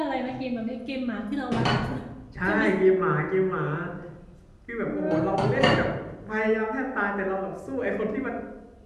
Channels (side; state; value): both; identical; correlation 1.00